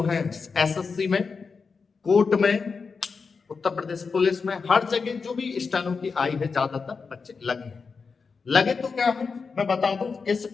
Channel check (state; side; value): quieter; right; 5.0 dB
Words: है एसएससी में, कोर्ट में, उत्तर प्रदेश पुलिस में, हर जगह जो भी स्टेनो की आई है ज्यादातर बच्चे लगे तो क्या है, मैं बता दूं इस